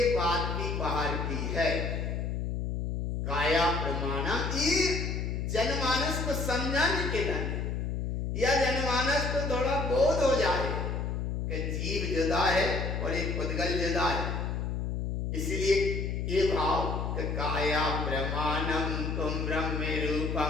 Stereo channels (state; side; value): noise; left; hum, 2 dB below the sound